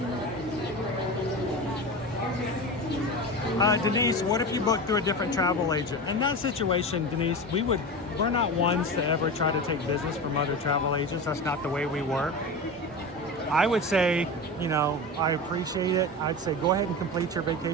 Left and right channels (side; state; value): both; normal; correlation 0.26